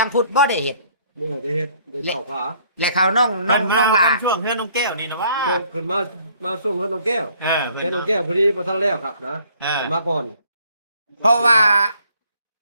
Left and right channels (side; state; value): both; inverted; correlation -0.61